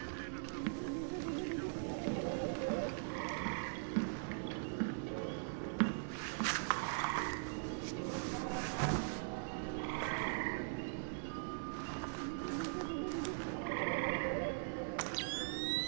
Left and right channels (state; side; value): silent; left; digital silence